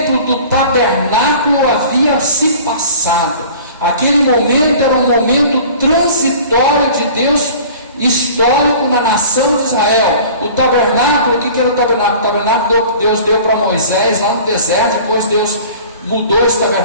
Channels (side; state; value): both; inverted; correlation -0.44